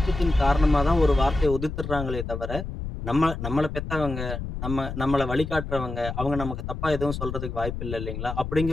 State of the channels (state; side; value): noise; left; rumble, 6 dB below the sound